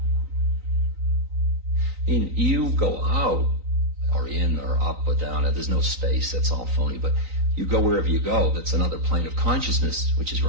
mean, you go out, or in, or up, or down. There's no space. That's all phony. But you go wherever you go. That's another plane of consciousness, which is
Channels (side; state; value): left; late; 3.9 ms